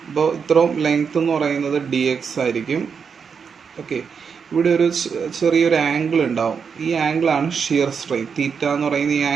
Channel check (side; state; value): left; quieter; 6.2 dB